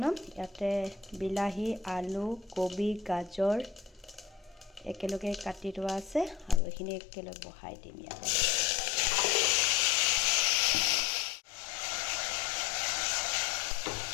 ইয়াতে বিলাহী আলু কবি গাজৰ একেলগে কাটি থোৱা আছে আৰু এইখিনি একেলগে বহাই দিম ইয়াতে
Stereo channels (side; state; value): right; drops out; at 6.6 s